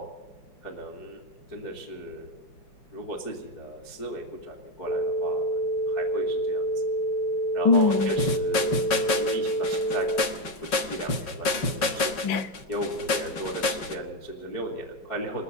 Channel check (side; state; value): right; late; 5.4 ms